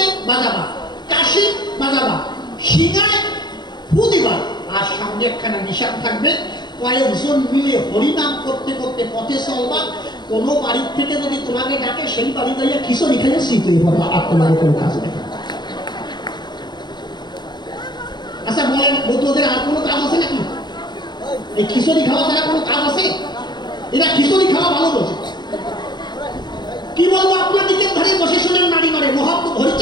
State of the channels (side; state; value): right; late; 0.21 ms